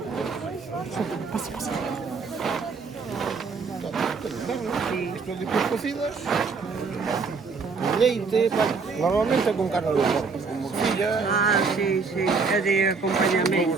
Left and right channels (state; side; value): quieter; left; 4.8 dB